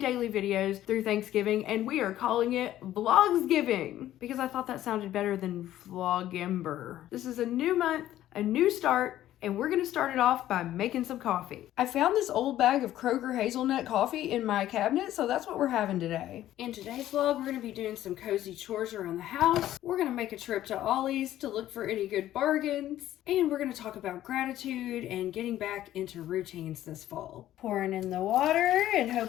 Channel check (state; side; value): quieter; right; 13.2 dB